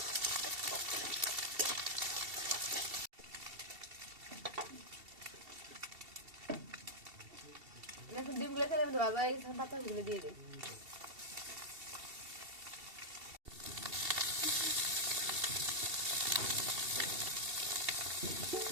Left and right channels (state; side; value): late; left; 2.7 ms